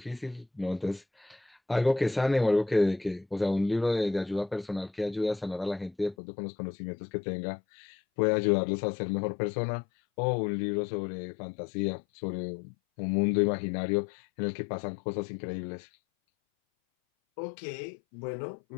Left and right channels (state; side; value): drops out; right; at 6.2 s